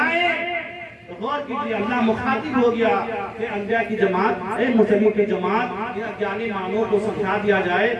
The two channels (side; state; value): both; identical; correlation 1.00